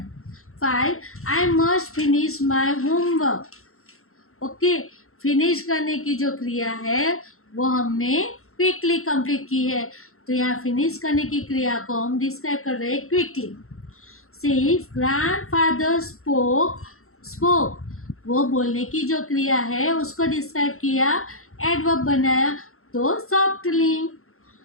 5 I must finish my homework. Okay, finish करने की जो क्रिया है वो हमने क्विकली कंप्लीट की है, तो यहाँ फिनिश करने की क्रिया को हम डिस्क्राइब कर रहे हैं क्विकली। 6 ग्रैंडफादर स्पोक, वो बोलने की जो क्रिया है उसको डिस्क्राइब किया, एडवर्ब बनाया तो सॉफ्टली।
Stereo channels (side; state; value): right; late; 0.62 ms